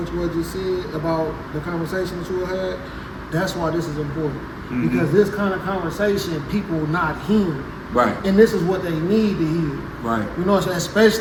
you just said about the conversation that you had. That's why this is important, because this kind of conversation people not hearing. Right. And this is what they need to hear. Right. You know what I'm saying?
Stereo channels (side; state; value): both; identical; correlation 1.00